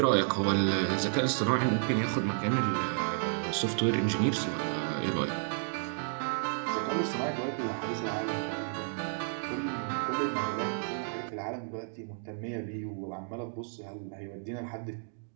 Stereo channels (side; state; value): left; silent; digital silence